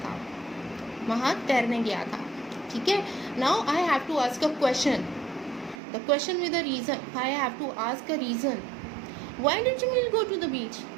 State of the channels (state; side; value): drops out; left; at 5.8 s